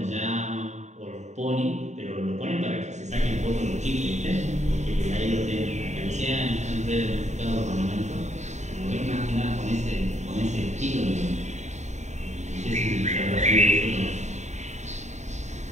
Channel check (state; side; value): late; left; 0.34 ms